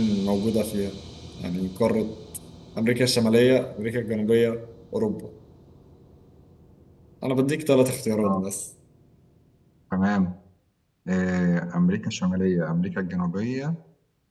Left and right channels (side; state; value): both; identical; correlation 1.00